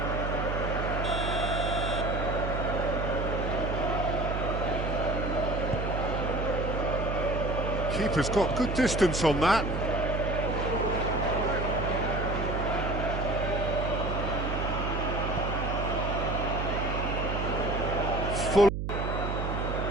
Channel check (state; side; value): noise; right; hum, 2 dB below the sound